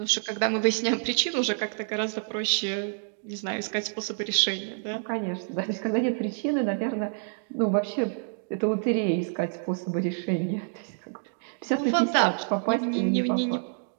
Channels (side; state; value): left; silent; digital silence